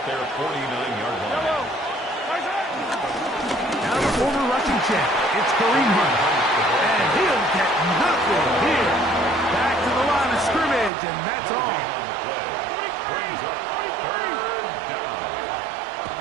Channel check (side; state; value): left; drops out; at 10.9 s